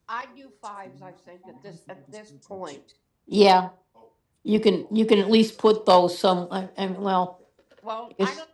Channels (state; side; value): identical; both; correlation 1.00